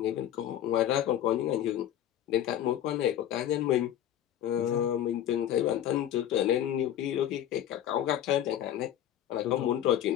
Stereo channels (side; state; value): right; quieter; 11.2 dB